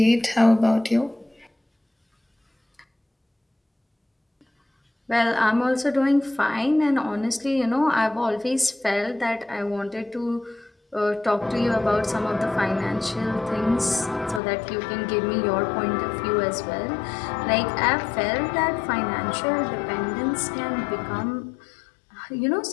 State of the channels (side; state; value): right; drops out; at 14.4 s